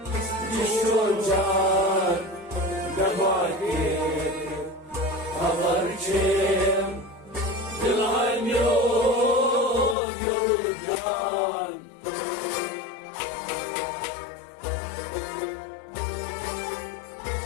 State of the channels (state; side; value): drops out; right; at 10.0 s